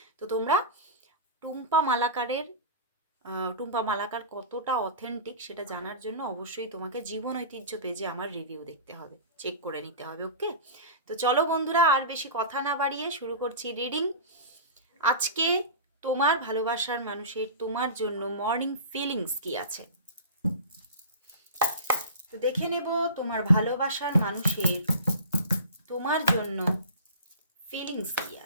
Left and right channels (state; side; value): inverted; both; correlation -0.33